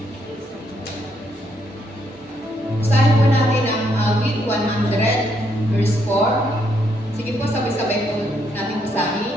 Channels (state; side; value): normal; both; correlation 0.74